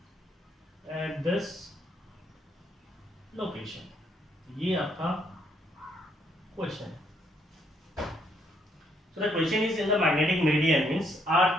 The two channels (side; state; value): both; normal; correlation 0.71